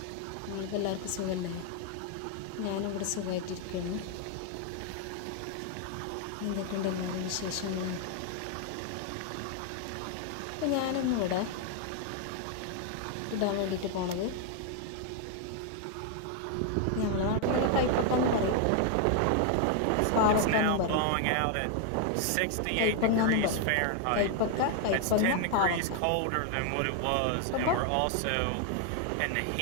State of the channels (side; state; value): both; different; correlation 0.00